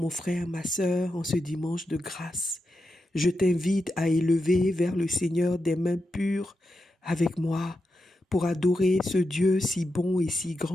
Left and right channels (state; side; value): normal; both; correlation 0.88